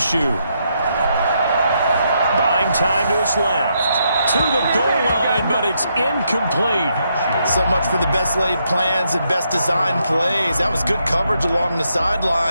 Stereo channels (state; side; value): inverted; both; correlation -0.78